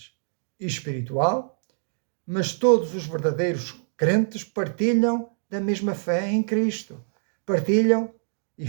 espiritual, mas todos os verdadeiros crentes partilham da mesma fé em Cristo, partilham e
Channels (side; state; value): left; silent; digital silence